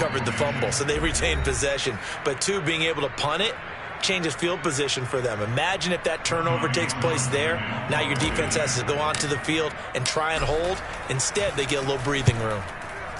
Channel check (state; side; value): identical; both; correlation 1.00